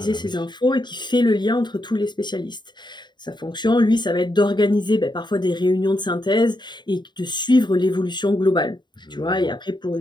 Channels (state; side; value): late; right; 0.22 ms